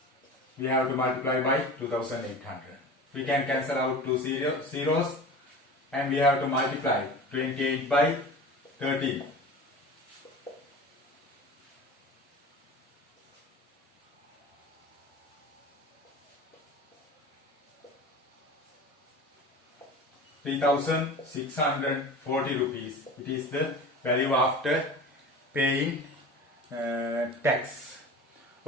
we have to multiply by 2,800. We can cancel out 2 zeros and we have to multiply 28 by 13. ₹3,640. It is the value after paying tax.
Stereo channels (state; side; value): normal; both; correlation 0.35